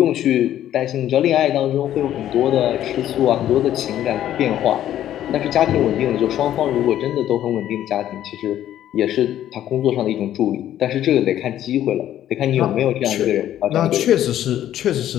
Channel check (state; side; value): quieter; right; 11.8 dB